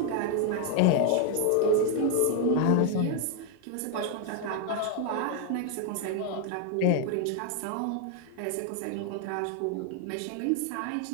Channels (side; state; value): both; different; correlation 0.00